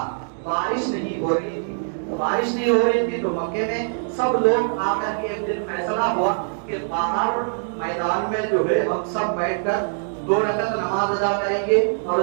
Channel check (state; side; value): silent; left; digital silence